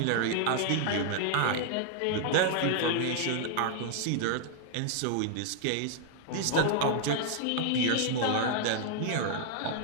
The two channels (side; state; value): both; different; correlation 0.00